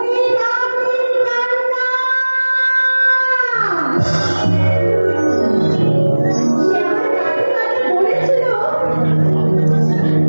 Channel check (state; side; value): inverted; both; correlation -1.00